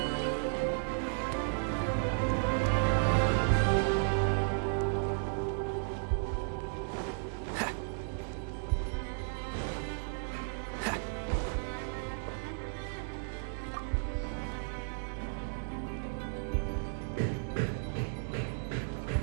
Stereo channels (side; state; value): left; silent; digital silence